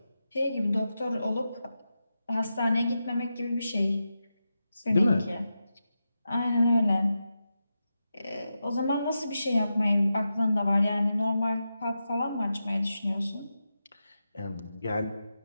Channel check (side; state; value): both; inverted; correlation -0.89